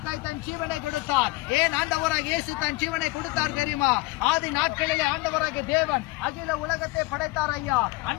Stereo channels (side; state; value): right; quieter; 21.5 dB